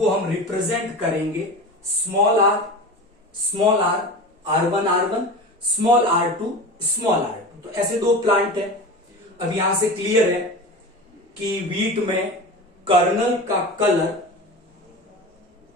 हम रिप्रेजेंट करेंगे small are, R1, R1, small R2, small R2। तो ऐसे दो प्लांट है। अब यहां से क्लियर है कि वीट में कर्नल का कलर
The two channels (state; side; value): normal; both; correlation 0.30